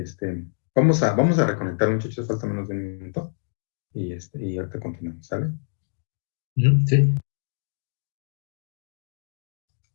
Vamos a reconectar, muchachos, falta menos de un minuto. Y ahorita continuamos, ¿sale? Sí.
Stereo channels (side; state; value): right; silent; digital silence